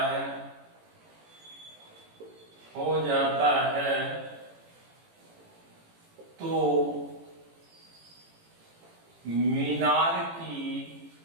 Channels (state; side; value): late; left; 18 ms